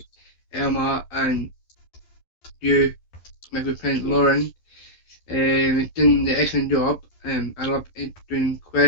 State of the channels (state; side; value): late; right; 11 ms